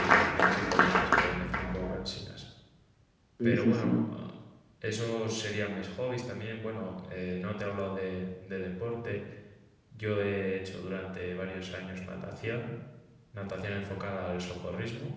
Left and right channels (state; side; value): identical; both; correlation 1.00